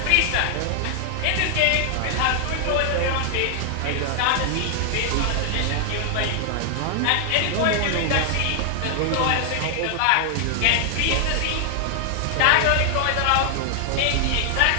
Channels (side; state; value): both; different; correlation 0.00